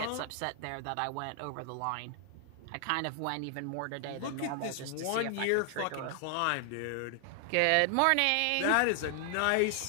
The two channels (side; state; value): both; different; correlation 0.00